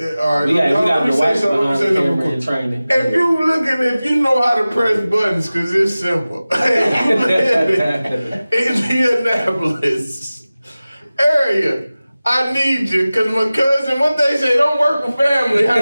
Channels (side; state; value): both; inverted; correlation -0.97